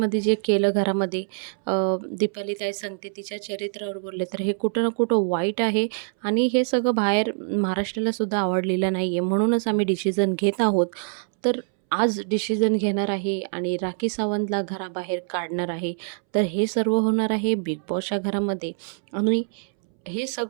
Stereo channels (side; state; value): left; silent; 62 dB below the other